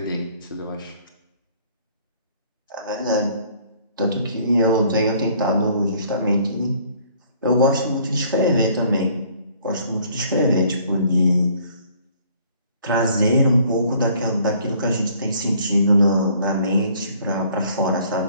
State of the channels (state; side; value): inverted; both; correlation -0.59